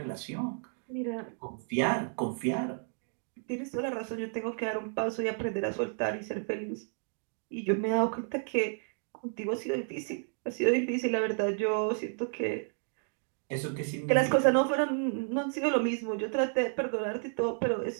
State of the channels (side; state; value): left; silent; 57 dB below the other